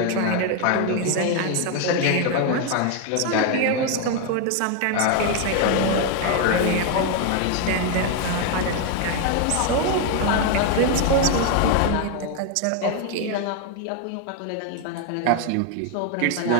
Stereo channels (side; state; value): both; different; correlation 0.01